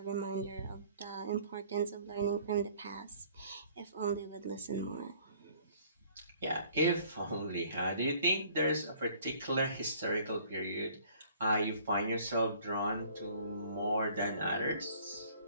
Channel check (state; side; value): inverted; both; correlation -0.56